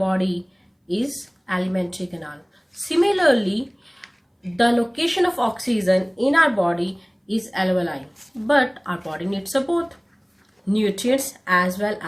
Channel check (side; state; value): both; identical; correlation 1.00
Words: is alimentary canal. Similarly, the location of oxygen in our body is alveoli, but our body needs both nutrients as well